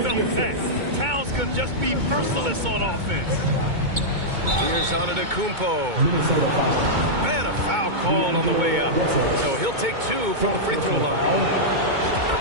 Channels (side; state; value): left; late; 2.2 ms